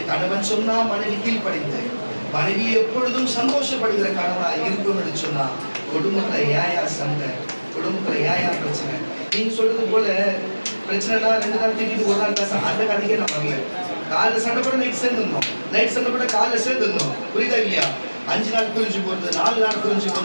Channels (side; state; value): both; inverted; correlation -1.00